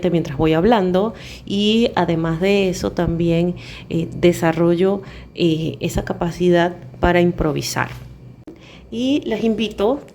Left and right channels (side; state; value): both; identical; correlation 1.00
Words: mientras voy hablando y además de eso también desarrollo esa capacidad para improvisar. Y los invito